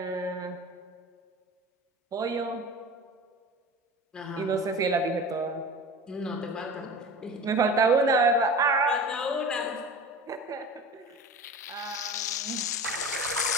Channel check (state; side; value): normal; both; correlation 0.35